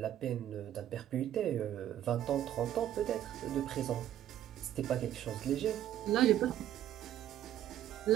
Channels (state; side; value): quieter; left; 11.7 dB